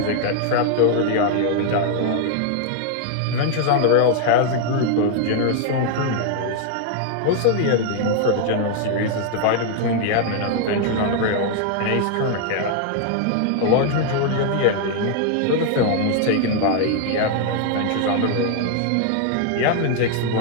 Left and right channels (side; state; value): both; different; correlation 0.00